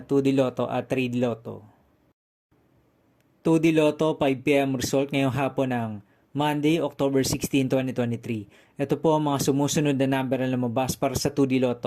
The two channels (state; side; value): identical; both; correlation 1.00